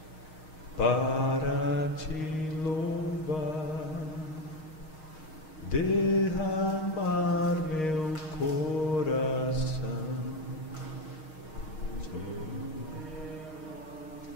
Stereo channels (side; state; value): right; late; 6.4 ms